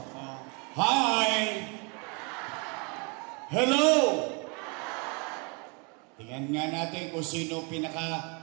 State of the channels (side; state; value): left; quieter; 32.9 dB